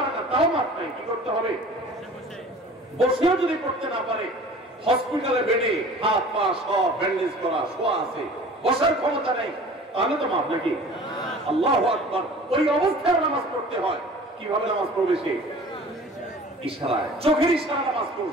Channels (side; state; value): both; normal; correlation 0.45